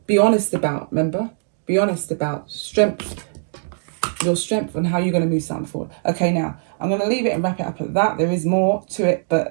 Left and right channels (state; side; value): silent; left; digital silence